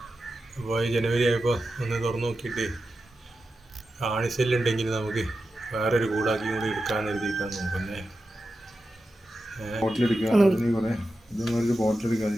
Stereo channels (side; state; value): both; normal; correlation 0.91